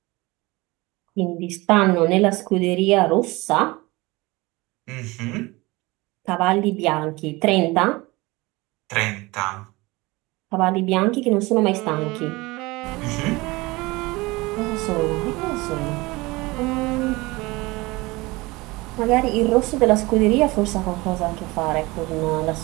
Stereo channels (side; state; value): left; quieter; 22.4 dB